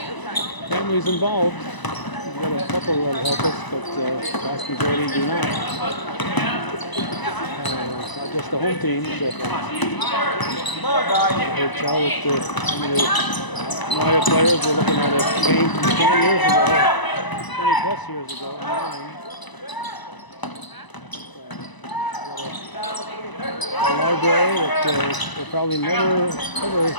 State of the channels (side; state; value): right; late; 1.0 ms